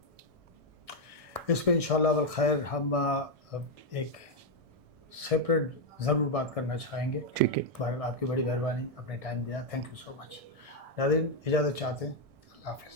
اس پہ انشاءاللہ والخیر ہم ایک سیپریٹ ضرور بات کرنا چاہیں گے. ٹھیک ہے، بہرحال آپ کی بڑی مہربانی، اپنے ٹائم دیا، تھینک یو سو مچ. ناظرین اجازت چاہتے ہیں، اللہ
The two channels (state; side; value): late; left; 1.6 ms